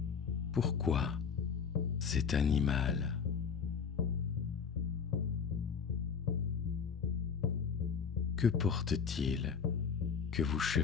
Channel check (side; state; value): right; quieter; 6.4 dB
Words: Pourquoi cet animal? Que porte-t-il que vous